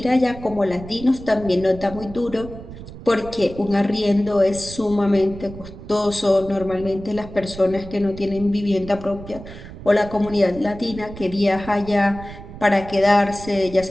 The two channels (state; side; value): noise; right; rumble, 14 dB below the sound